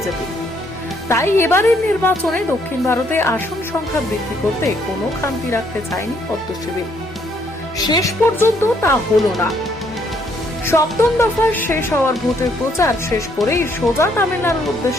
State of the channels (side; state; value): both; normal; correlation 0.69